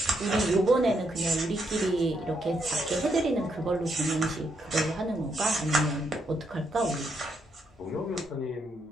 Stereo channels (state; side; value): normal; both; correlation 0.77